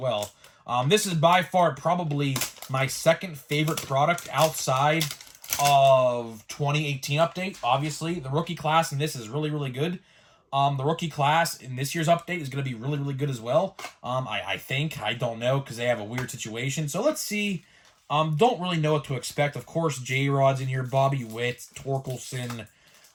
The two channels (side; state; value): both; identical; correlation 1.00